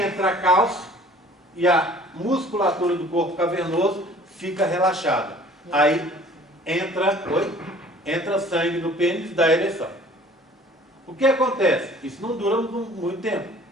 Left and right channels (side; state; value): both; normal; correlation 0.51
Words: cálcio e a musculatura do corpo cavernoso fica relaxada. Aí entra sangue no pênis da ereção. O que acontece? Isso não dura muito tempo.